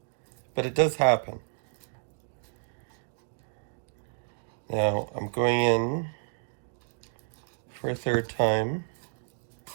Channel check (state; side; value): silent; left; digital silence